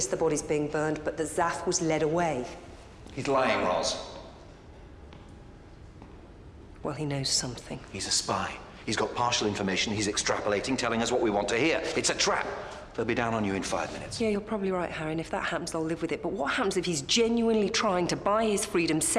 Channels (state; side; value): identical; both; correlation 1.00